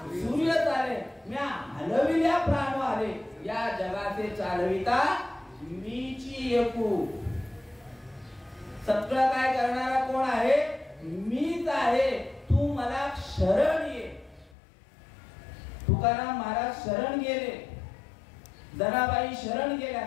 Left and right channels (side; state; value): right; drops out; at 14.6 s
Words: सूर्य चाले, म्या हलविल्या प्राण आले. या जगाचे चालविता मीची एकू. सगळं काय करणारा कोण आहे? मीच आहे. तू मला शरण ये. तुकाराम महाराज शरण गेले, जनाबाई शरण गेल्या,